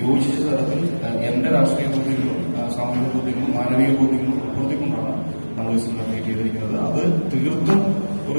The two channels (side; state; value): both; inverted; correlation -1.00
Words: യോജിച്ച തരത്തിൽ എന്റെ രാഷ്ട്രീയ ബോധ്യങ്ങളും സാമൂഹിക ബോധ്യങ്ങളും മാനവിക ബോധ്യങ്ങളും ഉൾപ്പെടുത്തിക്കൊണ്ടാണ് നമ്മൾ ഈ സിനിമ ക്രിയേറ്റ് ചെയ്തിരിക്കുന്നത്. അത് തീർത്തും